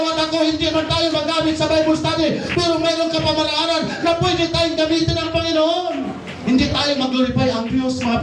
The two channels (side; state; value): both; identical; correlation 1.00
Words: at ako hindi man tayo magamit sa Bible study, pero mayroon ka pamaraanan na pwede tayong gamitin ng Panginoon. Hindi tayo mag-glorify ang Diyos, mga